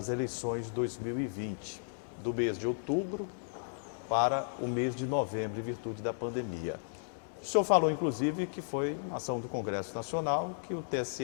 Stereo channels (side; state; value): right; silent; digital silence